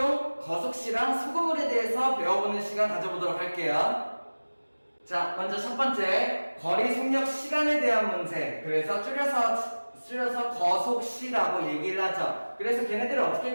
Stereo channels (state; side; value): inverted; both; correlation -1.00